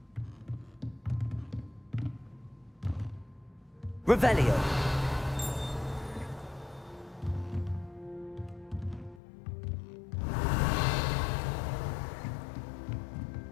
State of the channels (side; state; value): right; drops out; at 9.2 s